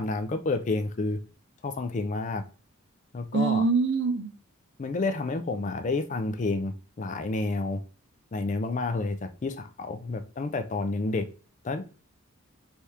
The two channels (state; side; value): normal; both; correlation 0.48